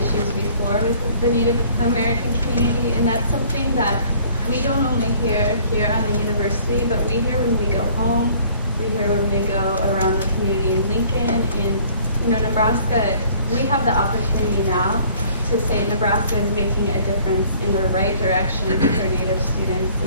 before with the Native American community, and that's something that we don't only hear here on the university, but we hear when we go home, we hear when we go around the community in Lincoln, in Nebraska. We have the opportunity now to say Nebraska is making a difference in the right direction for Native students,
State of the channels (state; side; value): inverted; both; correlation -0.56